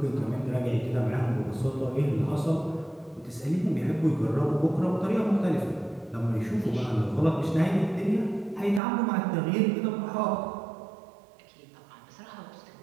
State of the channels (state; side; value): drops out; left; at 8.8 s